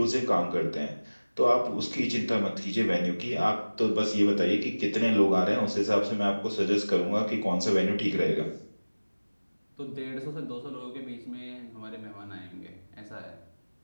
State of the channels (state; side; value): inverted; both; correlation -1.00